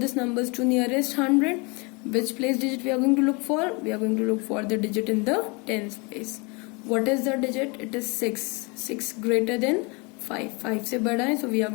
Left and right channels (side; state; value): right; quieter; 29.4 dB